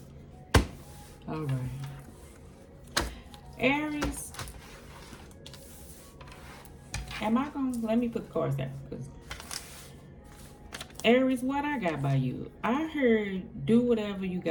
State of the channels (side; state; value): both; identical; correlation 1.00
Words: All right. Aries, am I going to... Let me put the cards down. Because Aries, what I got by you? I heard do whatever you